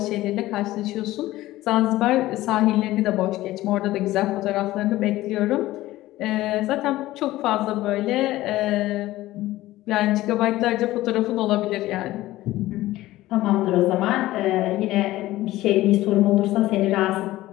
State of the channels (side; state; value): right; quieter; 16.5 dB